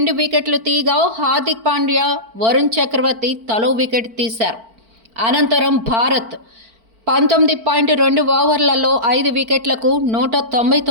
వికెట్లు తీగా హార్దిక్ పాండ్యా, వరుణ్ చక్రవర్తి తలో వికెట్ తీశారు. అనంతరం భారత్ 19.2 ఓవర్లలో 5 వికెట్లకు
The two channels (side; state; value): left; late; 4.5 ms